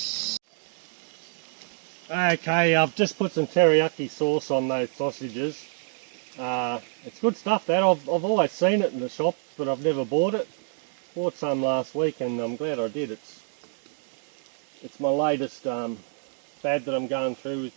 Okay, I've just put some teriyaki sauce on those sausages. It's good stuff, that. I've always seen it in the shop, but I've never bought it. Bought some last week and I'm glad I did. It's my latest fad that I'm going through with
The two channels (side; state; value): left; silent; 60 dB below the other